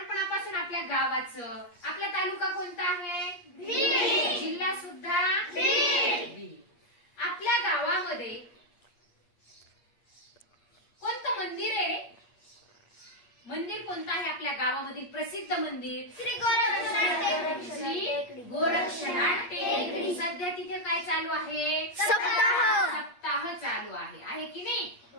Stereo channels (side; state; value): right; late; 8.5 ms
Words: आपल्या गावाचं, आपला तालुका कोणता आहे? बीड. जिल्हा सुद्धा बीड. आपल्या गावामध्ये कोणतं मंदिर आहे रे? मंदिर कोणतं आहे आपल्या गावामधील प्रसिद्ध मंदिर? श्री गोरक्षनाथ टेकडी. सध्या तिथे काय चालू आहे? सप्ताह चालू आहे की नाही?